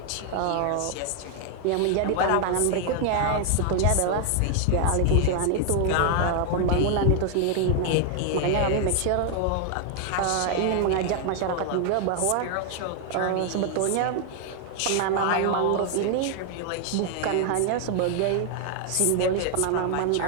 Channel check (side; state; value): both; different; correlation 0.00